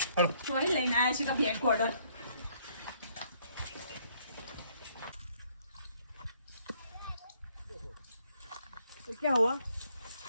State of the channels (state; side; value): inverted; both; correlation -0.67